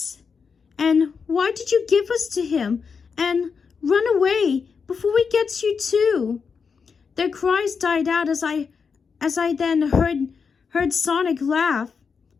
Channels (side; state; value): right; quieter; 5.7 dB